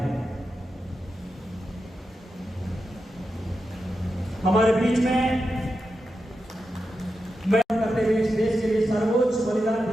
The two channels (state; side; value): normal; both; correlation 0.89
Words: हमारे बीच में मैं करते हुए इस देश के लिए सर्वोच्च बलिदान